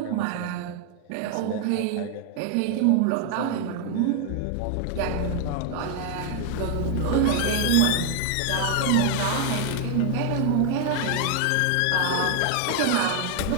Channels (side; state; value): both; different; correlation 0.00